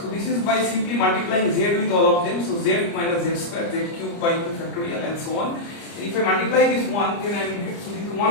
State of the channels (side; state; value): right; late; 30 ms